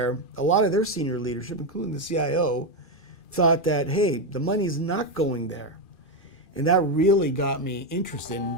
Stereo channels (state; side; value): late; right; 2.4 ms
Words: a lot of their senior leadership, including the CIO, thought that, hey, the money's not going there. And that really got me interested